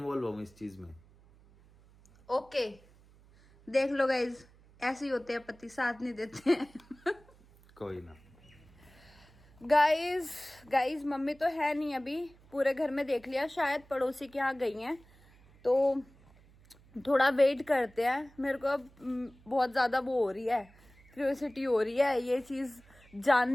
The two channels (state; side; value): noise; right; hum, 27 dB below the sound